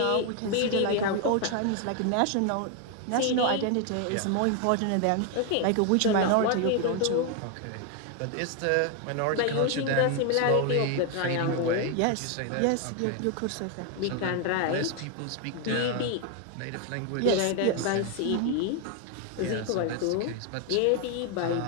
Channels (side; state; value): both; different; correlation 0.01